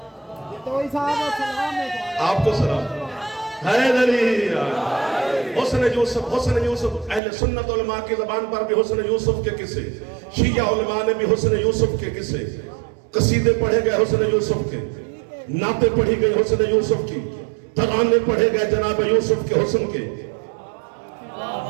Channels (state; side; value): drops out; left; at 7.2 s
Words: آپ کو سلام. حیدری حسن یوسف حسن یوسف. اہل سنت علماء کی زبان پر بھی حسن یوسف کے قصے، شیعہ علماء نے بھی حسن یوسف کے قصے، قصیدے پڑھے گئے حسن یوسف کے، نعتیں پڑھی گئی حسن یوسف کی، ترانے پڑھے گئے جناب یوسف کے حسن کے.